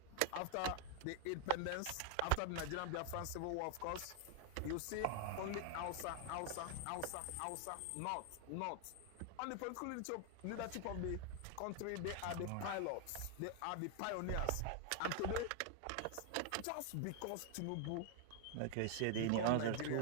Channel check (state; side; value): different; both; correlation 0.00